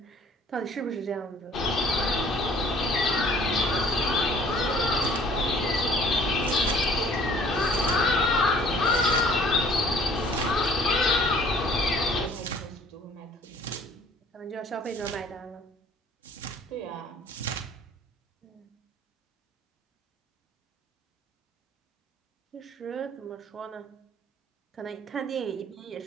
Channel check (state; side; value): normal; both; correlation 0.54